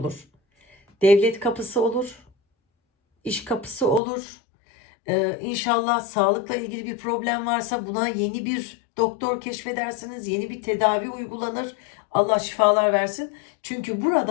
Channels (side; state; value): right; drops out; at 4.0 s